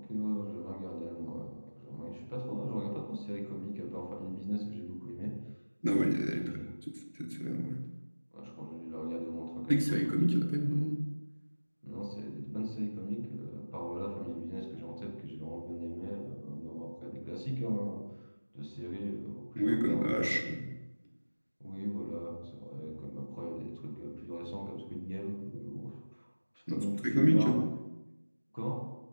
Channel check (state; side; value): inverted; both; correlation -1.00